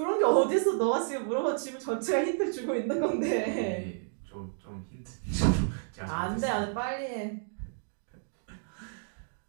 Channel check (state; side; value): silent; left; digital silence